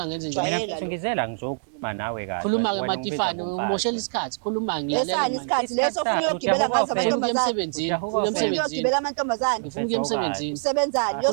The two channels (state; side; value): silent; left; digital silence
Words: ngenze Jwayele. njani mina mfethu ngizela ngizokhuluma nawe kahle khuluma-ke Wena Matifane ungibizwa umoshela ngomfazi. isikhathi khuluma lesani isikhathi leso ufuna uyogibela ngazo ngifuna ukuya amantombazane emsebenzini Ujahuka ufuna ufuna emsebenzini uyogibela amantombazane ngifuna ukuya emsebenzini usebenzani